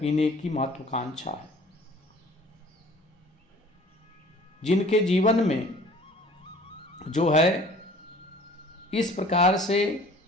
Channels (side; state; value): both; normal; correlation 0.49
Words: की महत्वाकांक्षा है। जिनके जीवन में जो है इस प्रकार से